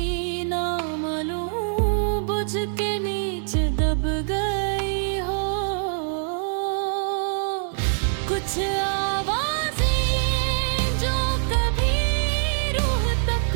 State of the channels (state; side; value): silent; left; digital silence